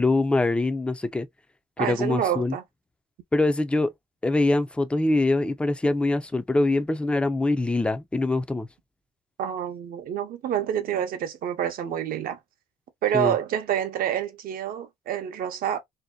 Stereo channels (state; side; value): normal; both; correlation 0.71